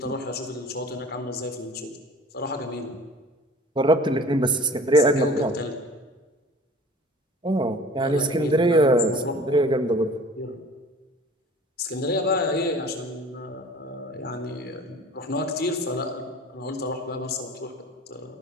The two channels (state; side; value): normal; both; correlation 0.45